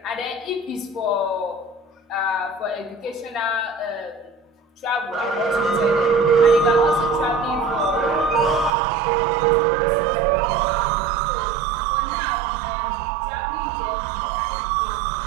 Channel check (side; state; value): left; drops out; at 8.7 s